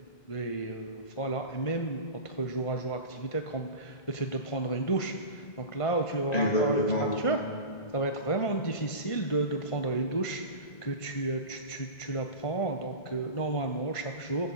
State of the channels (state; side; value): late; right; 1.5 ms